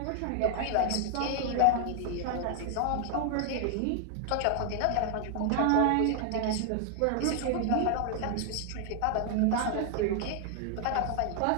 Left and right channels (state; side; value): different; both; correlation 0.00